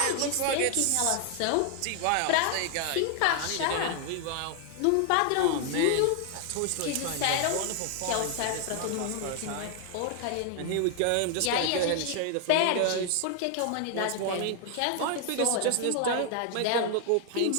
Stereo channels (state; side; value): different; both; correlation 0.00